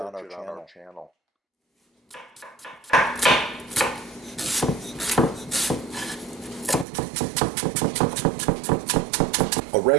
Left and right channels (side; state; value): left; drops out; at 6.9 s